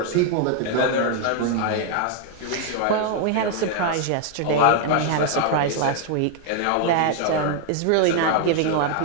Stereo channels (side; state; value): both; different; correlation 0.00